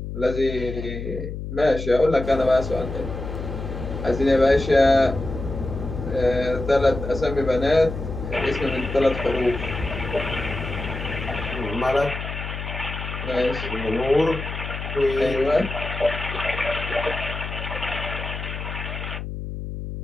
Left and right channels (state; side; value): noise; left; hum, 7 dB below the sound